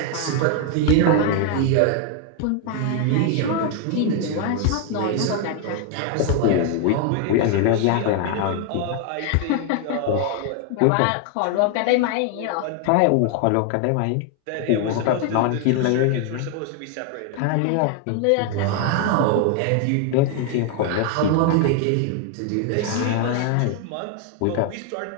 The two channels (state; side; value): different; both; correlation 0.01